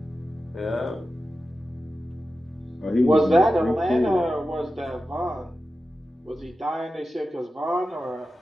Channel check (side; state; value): both; normal; correlation 0.92